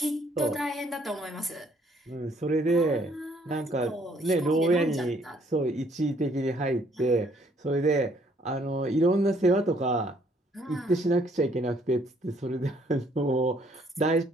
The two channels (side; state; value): both; normal; correlation 0.65